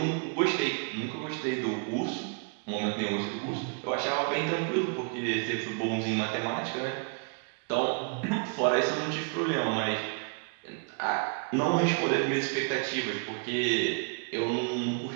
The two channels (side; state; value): left; quieter; 38.0 dB